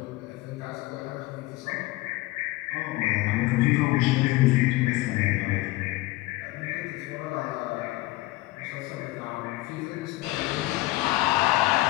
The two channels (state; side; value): quieter; right; 19.1 dB